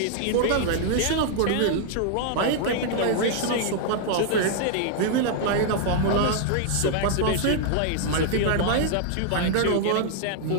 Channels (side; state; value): both; different; correlation -0.01